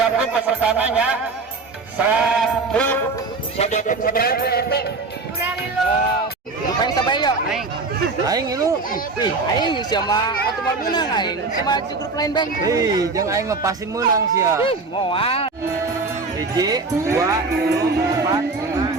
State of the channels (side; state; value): left; quieter; 3.9 dB